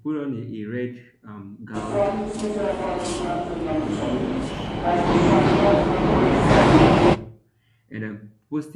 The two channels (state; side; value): identical; both; correlation 1.00